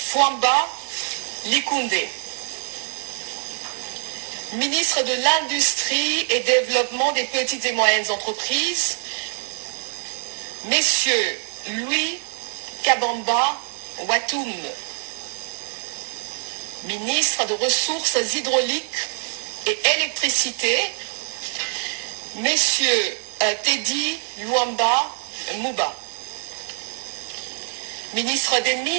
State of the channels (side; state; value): left; silent; 63 dB below the other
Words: Likunde. Ministre de l'Industrie et Développement des petites et moyennes entreprises, Messieurs Louis Kabamba Watoum. Ministre de Ressources hydrauliques et électricité, Messieurs Teddy Luamba Mouba. Ministre des